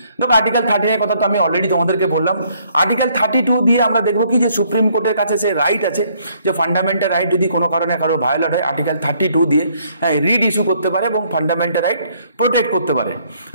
দেখো, আর্টিকেল 13 এর কথা তো আমি অলরেডি তোমাদেরকে বললাম। আর্টিকেল 32 দিয়ে আমরা দেখবো কি যে সুপ্রিম কোর্টের কাছে সে রাইট আছে যে ফান্ডামেন্টাল রাইট যদি কোনো কারণে কারো ভায়োলেট হয়, আর্টিকেল 32 দিয়ে রিড ইস্যু করতে পারে এবং ফান্ডামেন্টাল রাইট প্রোটেক্ট করতে পারে,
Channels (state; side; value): inverted; both; correlation -0.66